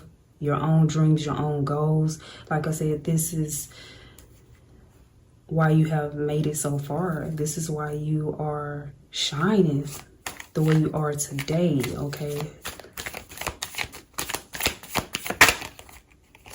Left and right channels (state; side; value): identical; both; correlation 1.00